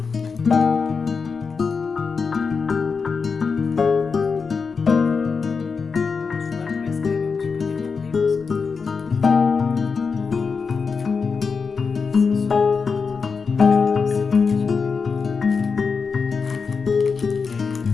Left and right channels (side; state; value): right; quieter; 5.2 dB